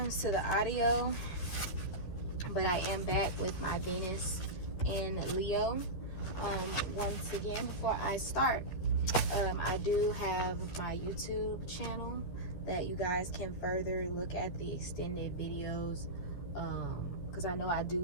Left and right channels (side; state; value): right; late; 11 ms